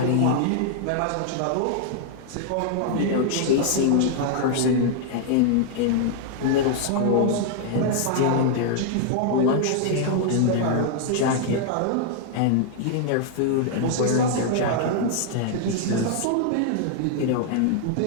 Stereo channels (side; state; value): both; different; correlation -0.01